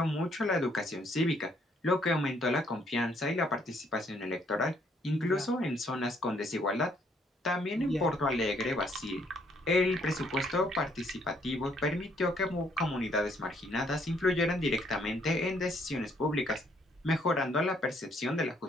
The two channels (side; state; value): both; normal; correlation 0.68